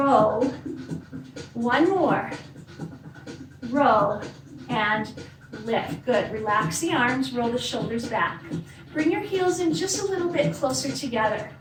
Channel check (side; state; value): both; identical; correlation 1.00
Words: 1 more. Row and lift. Good. Relax the arms, roll the shoulders back. Bring your heels in just a little bit closer together.